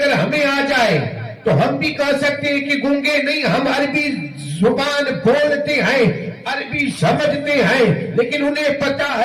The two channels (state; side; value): identical; both; correlation 1.00